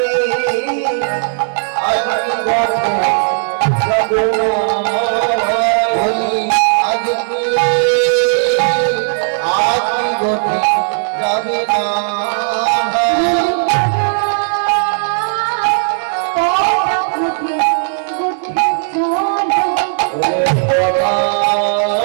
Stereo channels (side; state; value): left; silent; digital silence